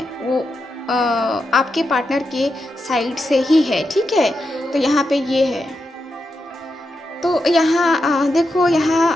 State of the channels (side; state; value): both; normal; correlation 0.87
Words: वो आपके पार्टनर के साइड से ही है, ठीक है। तो यहाँ पे ये है। तो यहाँ देखो,